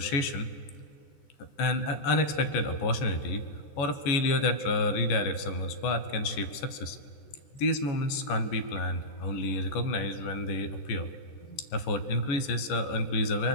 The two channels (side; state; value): right; late; 14 ms